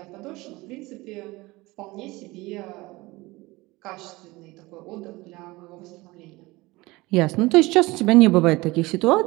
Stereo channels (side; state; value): left; quieter; 21.4 dB